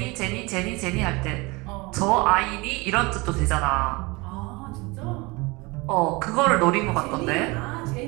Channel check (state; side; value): quieter; left; 25.0 dB